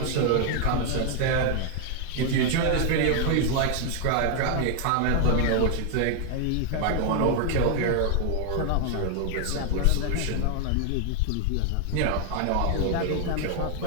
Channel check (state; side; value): different; both; correlation 0.00